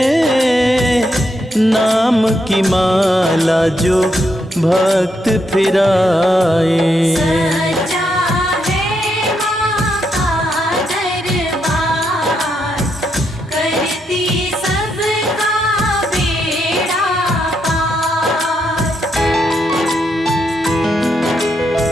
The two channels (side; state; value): both; normal; correlation 0.79